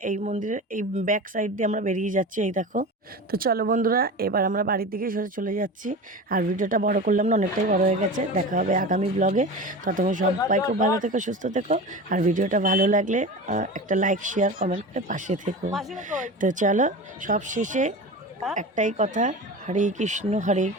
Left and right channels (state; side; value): normal; both; correlation 0.30